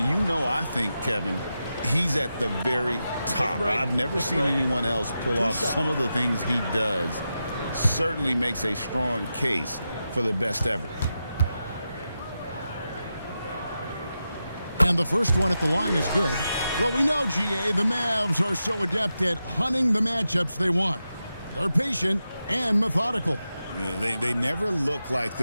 know, I think, Kevin, he's at the very top. I've never seen anyone else pull off some of the things he does. Certainly makes a strong case for the best ever. And the first one at the line is good. Well, we know, GA, the Mavs are so adept at hunting the matchups they want. They're patient and methodical. Yeah, they never look like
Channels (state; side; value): inverted; both; correlation -0.89